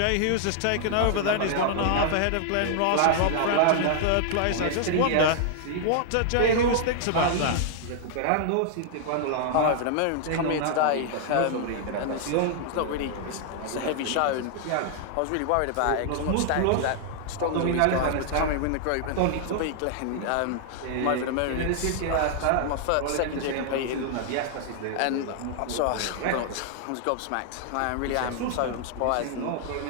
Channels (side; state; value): both; different; correlation 0.00